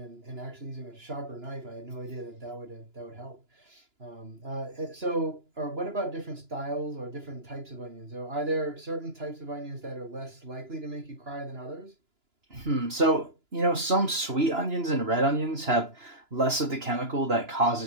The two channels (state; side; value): late; left; 2.9 ms